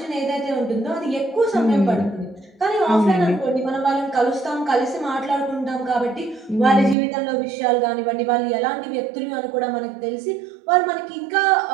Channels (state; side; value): drops out; left; at 7.0 s